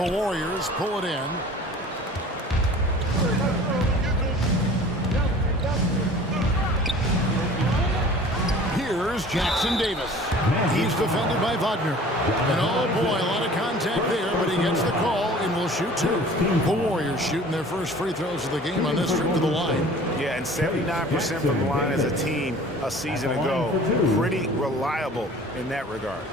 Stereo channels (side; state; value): both; normal; correlation 0.46